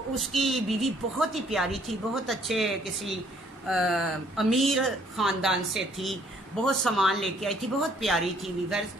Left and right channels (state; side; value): normal; both; correlation 0.63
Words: اس کی بیوی بہت ہی پیاری تھی، بہت اچھے کسی امیر خاندان سے تھی، بہت سامان لے کے آئی تھی، بہت پیاری تھی ویورز،